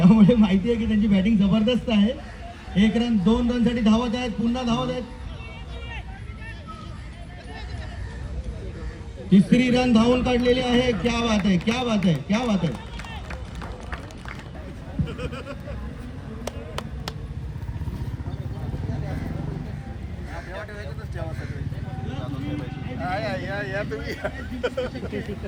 माहिती आहे की त्यांची बॅटिंग जबरदस्त आहे. 1 रन 2 रनसाठी धावत आहेत. पुन्हा धावत आहेत. 3री रन धावून काढलेली आहे. क्या बात है.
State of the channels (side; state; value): both; identical; correlation 1.00